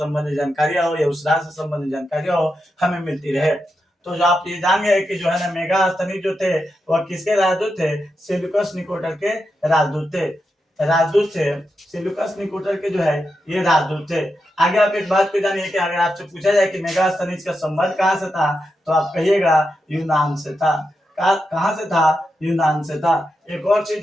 जानकारियां हो या उस राज्य से संबंधित जानकारियां हो हमें मिलती रहे। तो जो आप ये जान गए कि जो है ना मेगास्थनीज जो थे वह किसके राजदूत थे? सेल्यूकस निकोटर के राजदूत थे। राजदूत थे सेल्यूकस निकोटर के जो है ये राजदूत थे। आगे आप एक बात को जानिए कि अगर आपसे पूछा जाए कि मेगास्थनीज का संबंध कहाँ से था तो आप कहिएगा यूनान से था। कहां से था? यूनान से था। एक और चीज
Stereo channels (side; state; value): both; normal; correlation 0.87